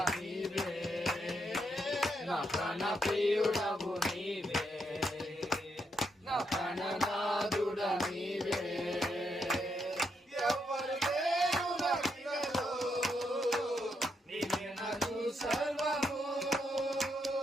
నీవే, నా ప్రాణ ప్రియుడవు నీవే, నా ప్రాణనాథుడా నీవే. ఎవరు లేరు నాకిలలో, నీవే నాకు సర్వము.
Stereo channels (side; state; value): both; normal; correlation 0.79